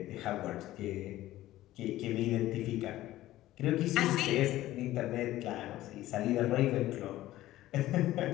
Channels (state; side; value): quieter; right; 15.3 dB